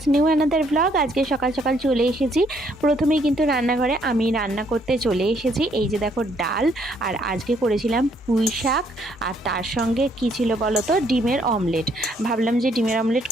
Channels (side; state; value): both; normal; correlation 0.68